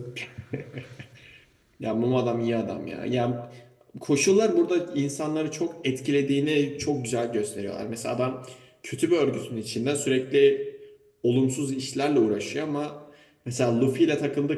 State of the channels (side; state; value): both; identical; correlation 1.00